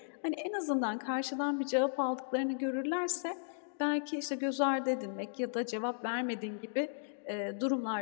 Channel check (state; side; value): silent; right; digital silence